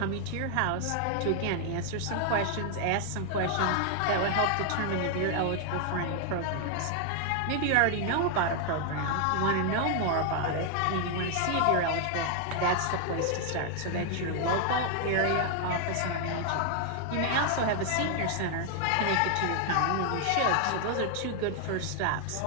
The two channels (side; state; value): both; different; correlation 0.00